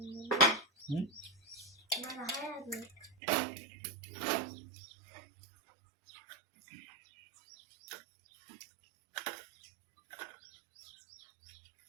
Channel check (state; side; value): drops out; left; at 3.2 s